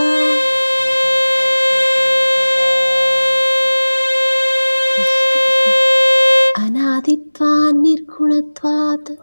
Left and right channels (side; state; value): both; inverted; correlation -1.00